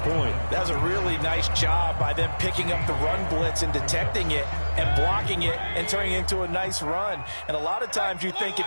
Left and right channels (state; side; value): inverted; both; correlation -1.00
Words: That was a really nice job by them picking up the run blitz and detecting it and blocking it and turning it into a nice run. And a lot of times you think